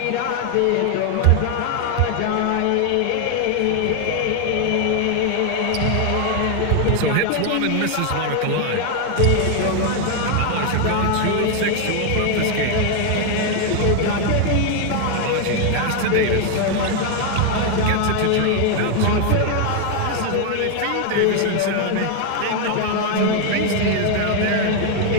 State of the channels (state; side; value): different; both; correlation 0.01